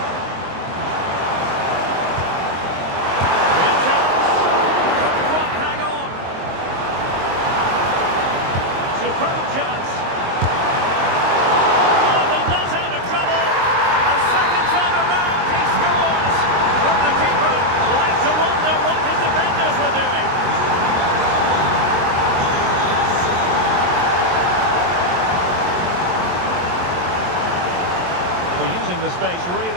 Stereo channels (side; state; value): left; late; 23 ms